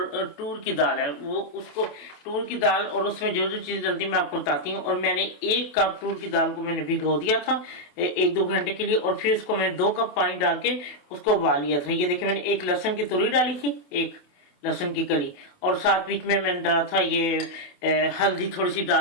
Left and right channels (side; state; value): right; late; 28 ms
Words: टूर की दाल है। वो उसको टूर की दाल और उसमें जो जो चीज़ डलती है मैं आपको बताती हूँ। और मैंने 1 कप टूर की दाल को मैंने भिगो दिया था 1-2 घंटे के लिए, और फिर उसको मैंने 2 कप पानी डाल के उसको उबाल लिया था। ये देखिए मैंने 1 लहसुन की तुरी डाली थी, 1 लहसुन की कली, और साथ बीच में मैंने डाला था ये हल्दी थोड़ी सी